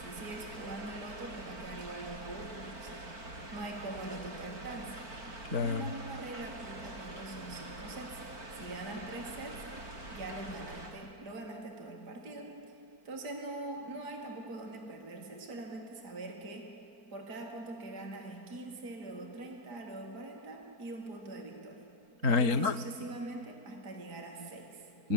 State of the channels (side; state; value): left; late; 4.4 ms